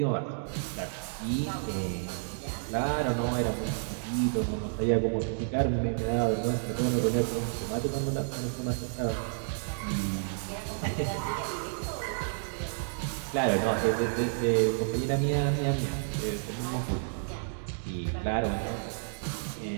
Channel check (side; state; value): left; silent; digital silence